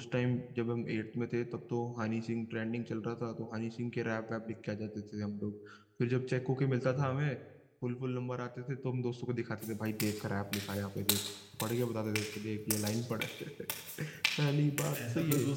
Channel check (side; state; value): both; identical; correlation 1.00